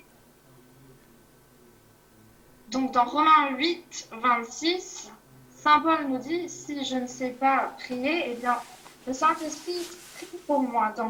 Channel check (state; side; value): identical; both; correlation 1.00